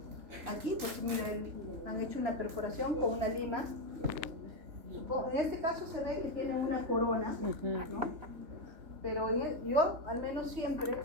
Aquí, pues miren, han hecho una perforación con una lima. En este caso se ve que tiene una corona, ¿no? Pero yo al menos siempre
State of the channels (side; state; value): left; late; 3.4 ms